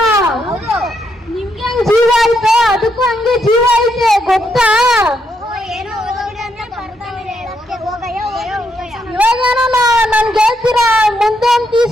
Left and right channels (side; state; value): both; normal; correlation 0.78